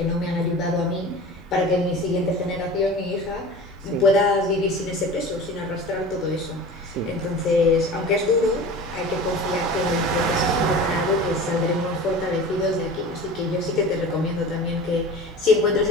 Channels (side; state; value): both; normal; correlation 0.36